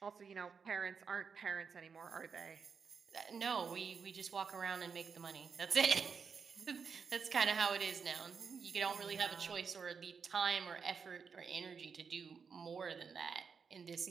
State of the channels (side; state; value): left; quieter; 5.9 dB